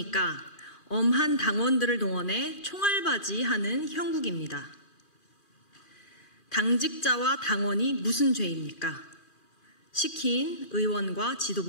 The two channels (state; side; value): late; right; 2.4 ms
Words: 엄한 당원들을 동원해 총알바지하는 형국입니다. 당직자와 당원이 무슨 죄입니까? 시킨 의원과